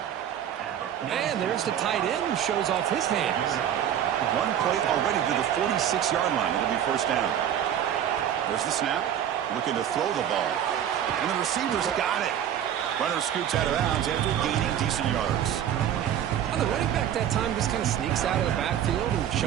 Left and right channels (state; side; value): quieter; left; 10.0 dB